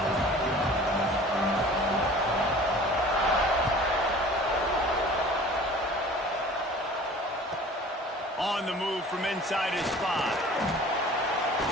On the move from inside his 5.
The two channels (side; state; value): both; normal; correlation 0.45